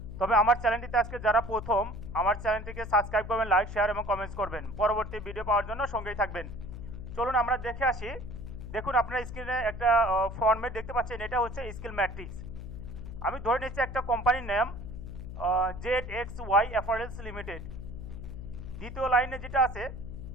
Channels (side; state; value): left; noise; hum, 9 dB below the sound